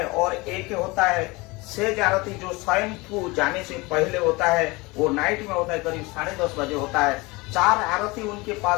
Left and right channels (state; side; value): quieter; right; 23.8 dB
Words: और एक होता है सेज आरती जो स्वयं को जाने से पहले होता है, वो नाइट में होता है, करीब 10:30 बजे होता है। 4 आरती उनके